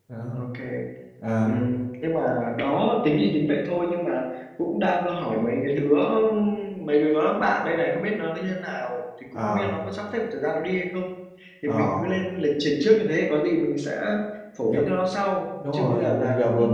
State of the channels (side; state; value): both; identical; correlation 1.00